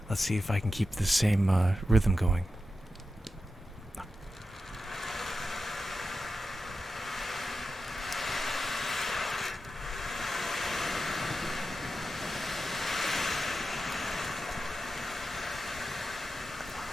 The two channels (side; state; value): both; normal; correlation 0.90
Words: Let's see if I can keep the same rhythm going.